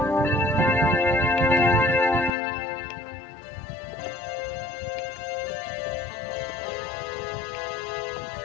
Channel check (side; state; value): right; drops out; at 2.4 s